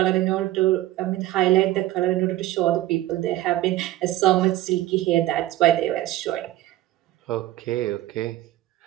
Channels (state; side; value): quieter; left; 15.4 dB